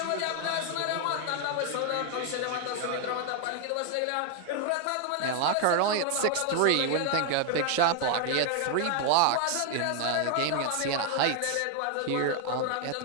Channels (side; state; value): both; different; correlation 0.00